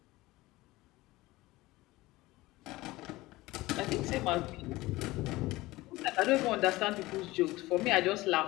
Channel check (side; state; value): right; quieter; 19.3 dB